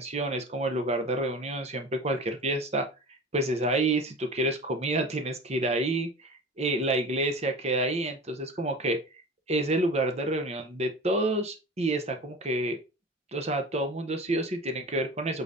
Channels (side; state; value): both; normal; correlation 0.35